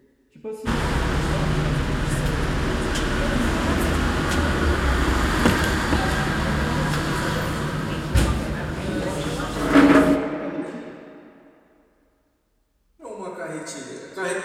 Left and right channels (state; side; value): identical; both; correlation 1.00